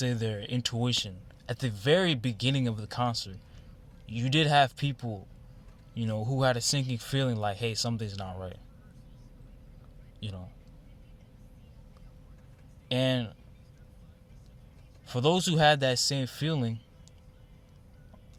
their intuition, at the very beginning of the concert. You did have people, you know, who had a sinking feeling like, hey, something's not right. You know. And for those who had that same feeling,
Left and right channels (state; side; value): identical; both; correlation 1.00